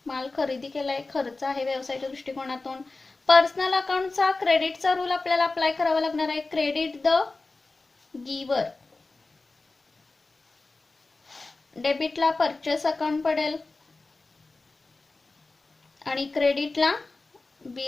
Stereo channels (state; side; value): quieter; right; 3.5 dB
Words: माल खरेदी केलाय, खर्च आहे व्यवसायाच्या दृष्टिकोनातून. पर्सनल अकाउंटचा क्रेडिटचा रूल आपल्याला अप्लाय करावा लागणार आहे. क्रेडिट द गिवर. डेबिटला परचेस अकाउंट पडेल आणि क्रेडिटला